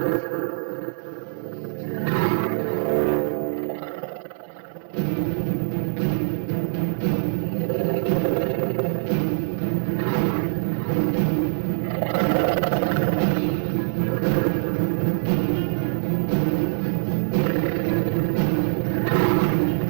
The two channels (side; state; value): left; silent; 63 dB below the other